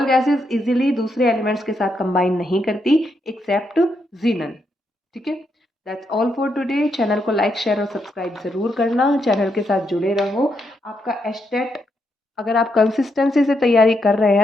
gases easily दूसरे एलिमेंट्स के साथ कंबाइन नहीं करती एक्सेप्ट जीनन। ठीक है, that's all for today. Channel को लाइक शेयर और सब्सक्राइब जरूर करना, चैनल के साथ जुड़े रहो। आपका एस्टेट, अगर आप कंसिस्टेंसी से तैयारी कर रहे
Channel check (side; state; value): both; normal; correlation 0.80